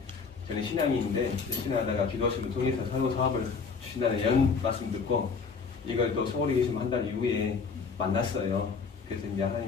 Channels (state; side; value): quieter; right; 5.2 dB